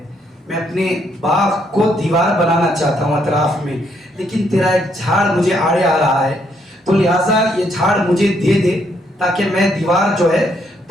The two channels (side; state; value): both; normal; correlation 0.73